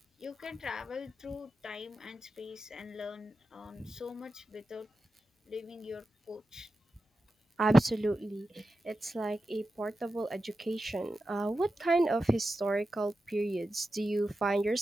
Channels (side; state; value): both; normal; correlation 0.91